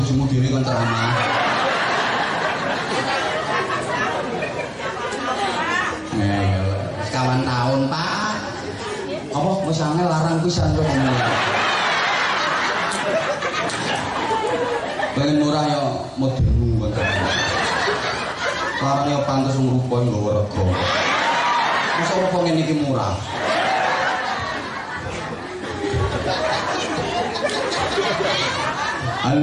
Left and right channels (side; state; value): both; identical; correlation 1.00